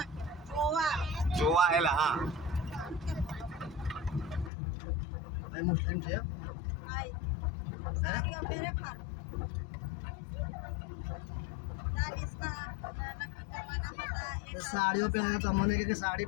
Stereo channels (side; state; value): right; drops out; at 4.5 s